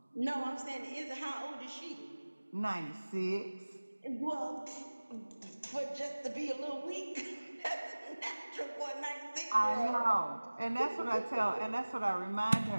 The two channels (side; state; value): both; inverted; correlation -1.00